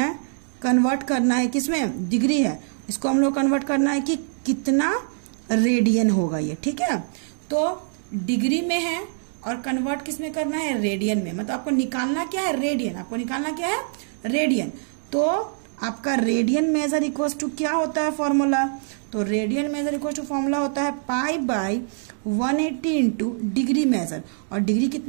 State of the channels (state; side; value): silent; left; digital silence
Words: है किसमें? डिग्री है. इसको हम लोग कन्वर्ट करना है कि कितना रेडियन होगा ये. ठीक है, तो डिग्री में है और कन्वर्ट किसमें करना है? रेडियन में. मतलब आपको निकालना क्या है? रेडियन. तो आपका रेडियन मेजर इक्वल टू क्या होता है फॉर्मूला? तो radian measure equal to formula होता है pi by 180 into degree measure. और डिग्री